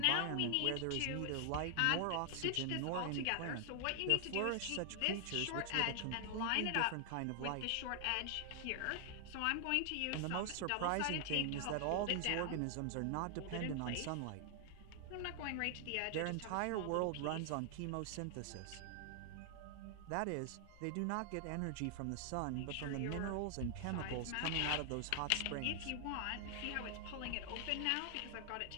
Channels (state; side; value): different; both; correlation 0.00